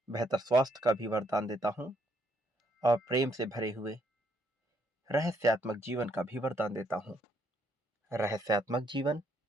बेहतर स्वास्थ्य का भी वरदान देता हूं और प्रेम से भरे हुए रहस्यात्मक जीवन का भी वरदान देता हूं। रहस्यात्मक जीवन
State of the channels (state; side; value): normal; both; correlation 0.72